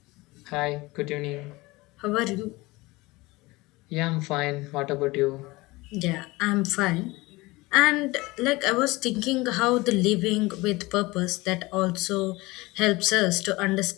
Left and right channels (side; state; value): right; quieter; 21.8 dB